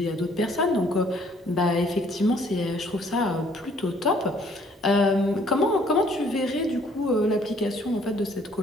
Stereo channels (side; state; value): both; normal; correlation 0.61